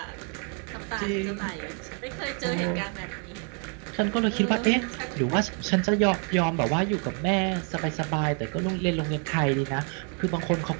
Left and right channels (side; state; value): left; quieter; 39.4 dB